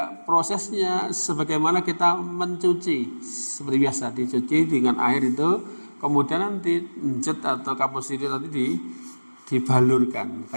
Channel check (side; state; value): both; inverted; correlation -1.00